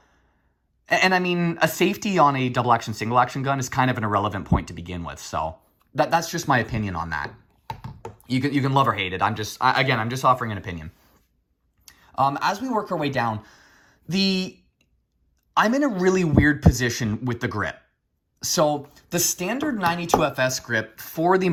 and I mean, a safety on a double action, single action gun is kind of an irrelevant point to begin with. So that's just my opinion on that. You can love or hate it. I'm just offering an opinion. As we work our way down, I'm in a really weird position with the grip. So the standard 92FS grip, for the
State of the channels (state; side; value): identical; both; correlation 1.00